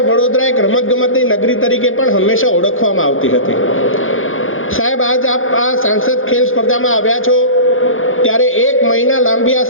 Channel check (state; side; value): late; right; 0.59 ms